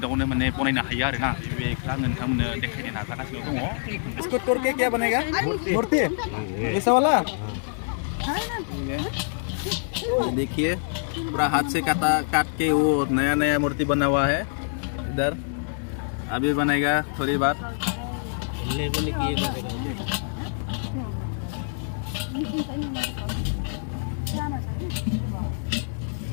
माने बनायनो हायो आरोना बेखौ आं नोंथांमोननो देखायनो नाजागासिनो दङ इसको तोड़ के क्या बनेगा मूर्ति ऐसा वाला देखिए पूरा हाथ से काट के वो नया नया मूर्ति बना हुआ है इधर अभी बनेगा थोड़ी बार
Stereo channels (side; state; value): right; silent; digital silence